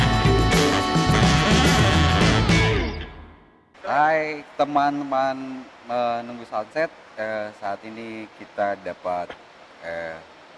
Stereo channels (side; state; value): both; identical; correlation 1.00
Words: Hai teman-teman menunggu sunset, saat ini kita dapat